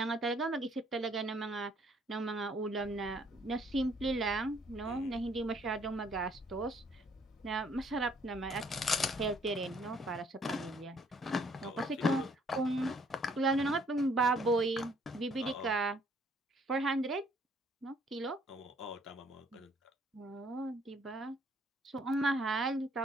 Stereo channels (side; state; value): both; normal; correlation 0.64